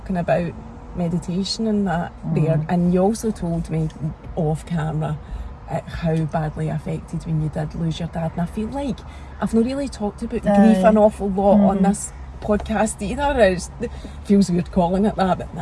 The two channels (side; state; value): both; identical; correlation 1.00